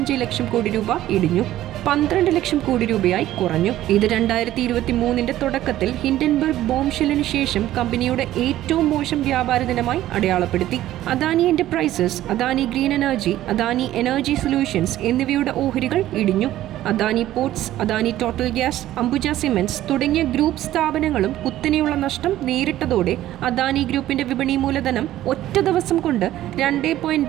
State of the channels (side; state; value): left; quieter; 13.9 dB